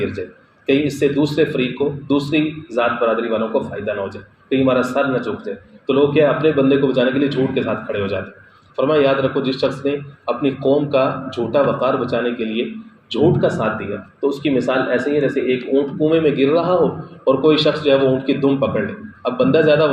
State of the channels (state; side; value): identical; both; correlation 1.00